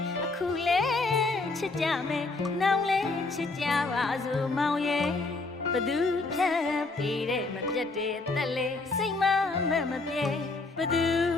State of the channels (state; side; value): quieter; right; 3.5 dB